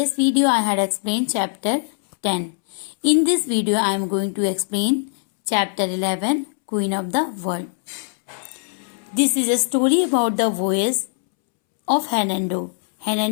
video I had explained chapter 10. In this video I am going to explain chapter 11, Queen of the World. This is a story about the voyage of Hernando.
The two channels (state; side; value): silent; right; 65 dB below the other